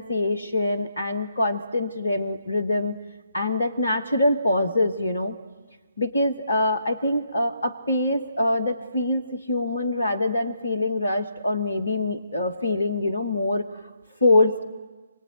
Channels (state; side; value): inverted; both; correlation -0.76